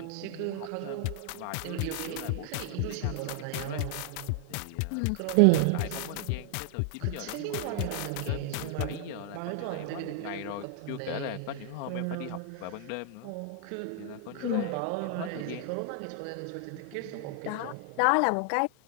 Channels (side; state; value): both; different; correlation 0.00